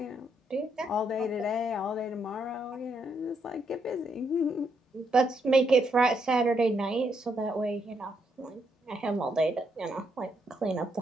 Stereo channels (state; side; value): normal; both; correlation 0.76